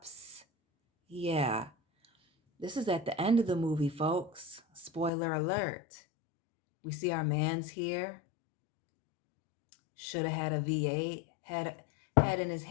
Yeah. This is at the end of the movie, folks. Spoiler alert. We see our man's here. Should have had a V8. Had in his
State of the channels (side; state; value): right; drops out; at 5.1 s